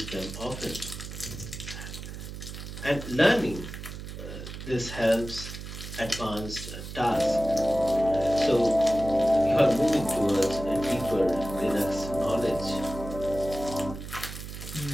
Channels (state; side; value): noise; right; hum, 10 dB below the sound